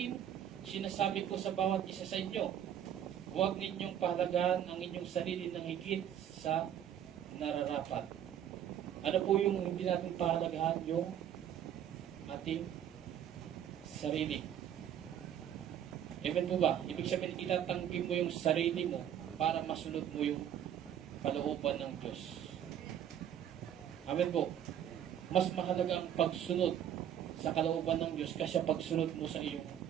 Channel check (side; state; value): left; quieter; 9.9 dB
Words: sinasabi ko sa bawat isa sa inyo, huwag ninyong pahalagahan ang inyong sarili ng higit sa nararapat. Ano po yung hindi natin pahalagahan? Yung ating sarili. Amen po ba? Ibig sabihin, itatanggi mo yung sarili mo para masunod mo yung kalooban ng Diyos. Amen po. Mas mahalaga ang pagsunod sa kalooban ng Diyos kasi pagsunod mo sa iyong